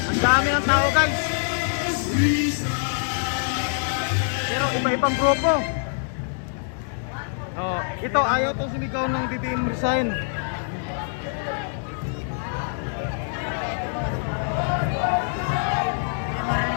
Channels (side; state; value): right; silent; digital silence